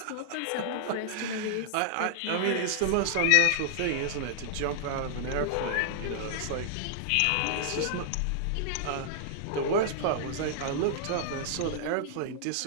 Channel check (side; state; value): both; different; correlation -0.01